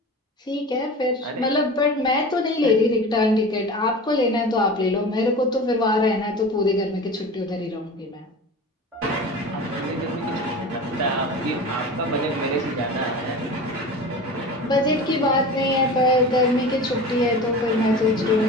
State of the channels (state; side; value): normal; both; correlation 0.34